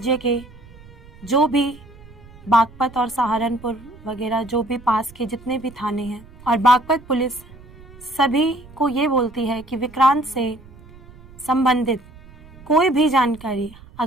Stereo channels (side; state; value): right; noise; rumble, 21 dB below the sound